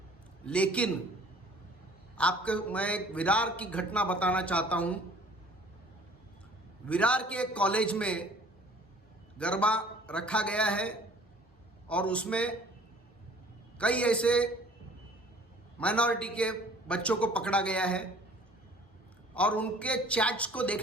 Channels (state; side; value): normal; both; correlation 0.52